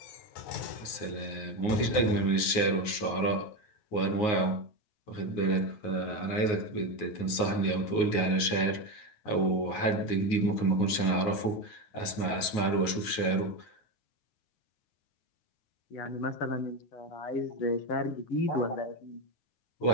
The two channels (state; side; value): late; right; 9.4 ms